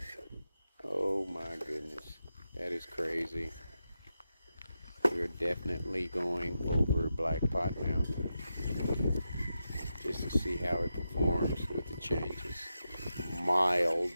Oh my goodness, that is crazy. We're definitely going over Black Pot now, just to see how it performs with the changes.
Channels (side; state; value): both; inverted; correlation -0.88